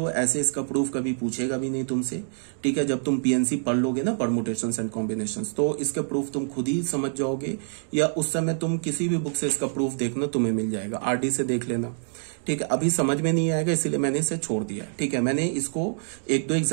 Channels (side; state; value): left; silent; digital silence